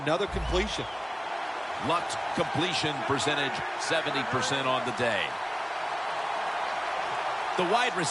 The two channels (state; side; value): identical; both; correlation 1.00